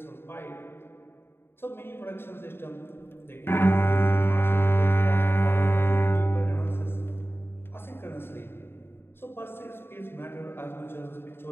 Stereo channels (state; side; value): late; right; 0.11 ms